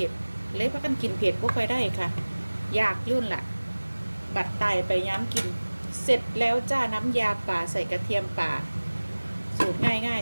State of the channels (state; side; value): inverted; both; correlation -1.00